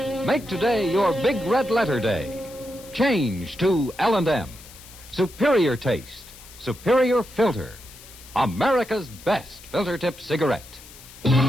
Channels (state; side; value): noise; left; hiss, 19 dB below the sound